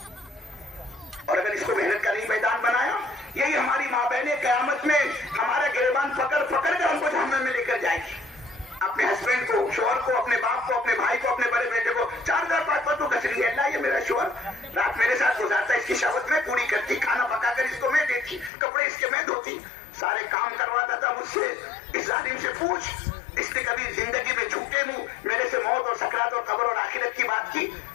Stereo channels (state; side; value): drops out; right; at 18.5 s